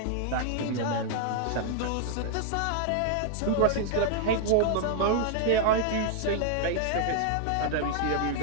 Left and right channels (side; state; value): both; different; correlation 0.00